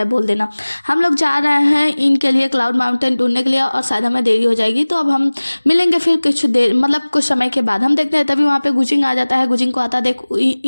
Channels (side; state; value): both; inverted; correlation -1.00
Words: बोल देना। हम लोग जा रहे हैं इनके लिए क्लाउड माउंटेन ढूंढने के लिए और शायद हमें देरी हो जाएगी, तो अब हम मिलेंगे फिर कुछ देर, मतलब कुछ समय के बाद। हम देखते हैं तभी वहाँ पे गुजिंग आ जाता है। गुजिंग को आता देख